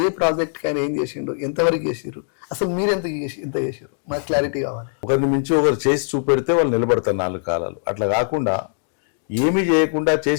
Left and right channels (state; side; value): silent; right; digital silence